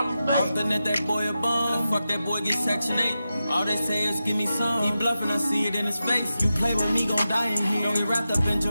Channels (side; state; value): both; inverted; correlation -0.91